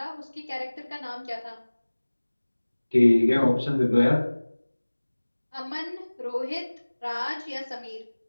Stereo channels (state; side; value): inverted; both; correlation -1.00